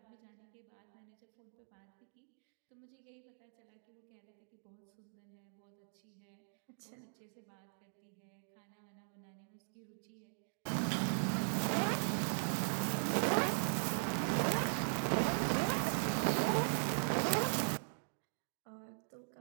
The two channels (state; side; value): silent; left; digital silence